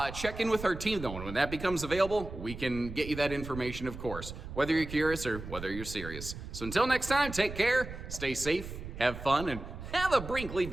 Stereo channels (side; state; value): right; noise; rumble, 10 dB below the sound